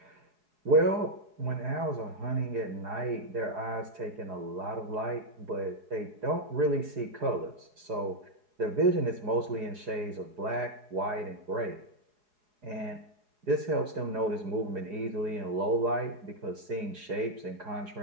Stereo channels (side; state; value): left; late; 4.8 ms